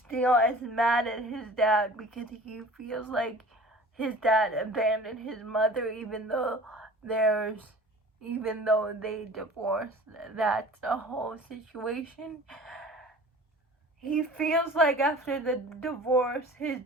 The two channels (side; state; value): both; normal; correlation 0.43